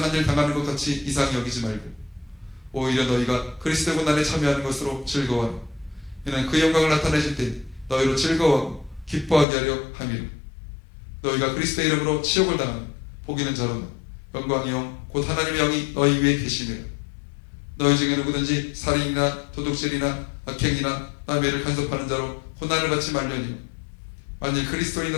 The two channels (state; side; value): drops out; right; at 9.5 s